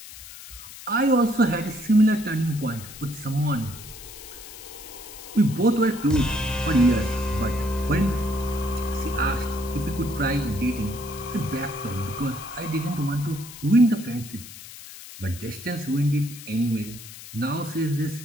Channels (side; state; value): left; noise; hiss, 15 dB below the sound